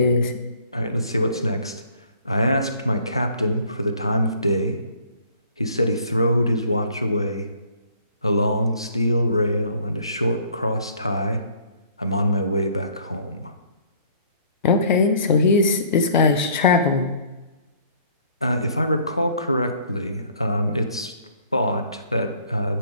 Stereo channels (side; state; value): both; inverted; correlation -0.57